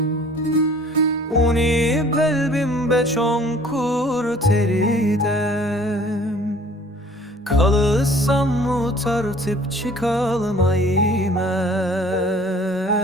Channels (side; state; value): both; normal; correlation 0.52